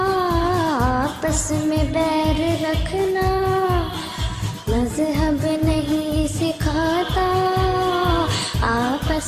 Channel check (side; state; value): both; identical; correlation 1.00